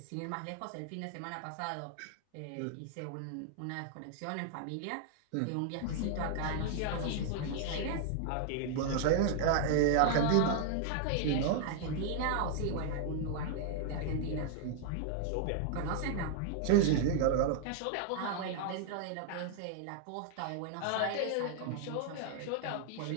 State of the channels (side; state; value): both; different; correlation -0.01